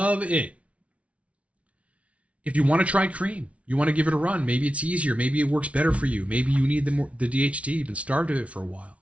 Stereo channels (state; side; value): late; left; 0.064 ms